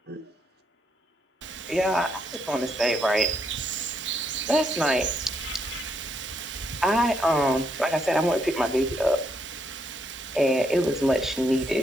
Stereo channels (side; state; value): both; normal; correlation 0.76